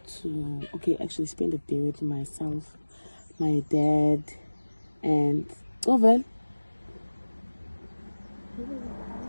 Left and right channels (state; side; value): inverted; both; correlation -1.00